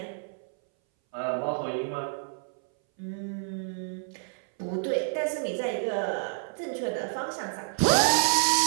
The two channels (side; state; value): left; silent; 59 dB below the other